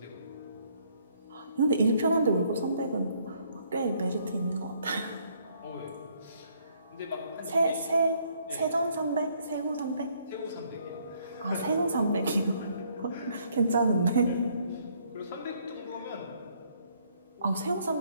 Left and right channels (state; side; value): inverted; both; correlation -0.67